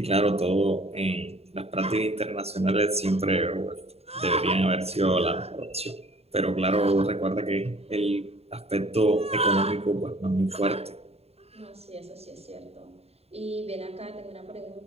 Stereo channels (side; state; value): left; late; 0.30 ms